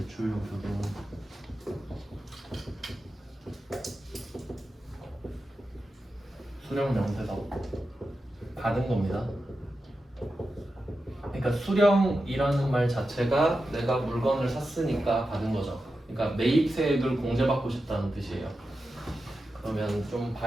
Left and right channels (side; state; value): both; normal; correlation 0.91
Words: 등 수령명세서 받은 겁니다. 그러니까 수령이라는 말 자체가 내가 물건을 샀으니까 받은 거죠. 그러니까 매입세액을 공제받고 싶다는 뜻이에요. 그러면 좀